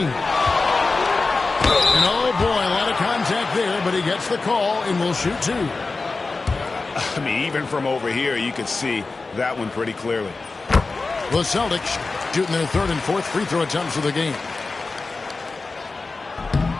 And oh boy, a lot of contact there, but he gets the call and will shoot two. I mean, even from over here, you could see that one pretty clearly. The Celtics shooting their third and fourth free throw attempts of the game.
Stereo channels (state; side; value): quieter; right; 3.8 dB